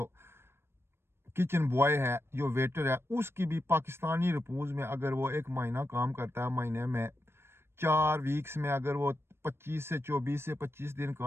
کچن بوائے ہے, جو ویٹر ہے, اس کی بھی پاکستانی رپوز میں اگر وہ ایک مہینہ کام کرتا ہے, مہینے میں 4 ویکس میں اگر وہ 24 سے 25 دن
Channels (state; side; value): late; left; 0.12 ms